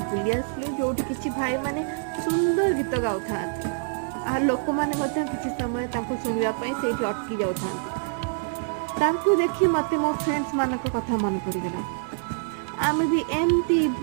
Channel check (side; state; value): left; silent; digital silence